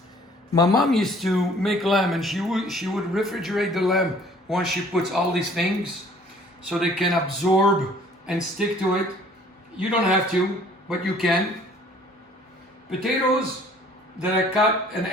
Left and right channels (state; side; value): normal; both; correlation 0.55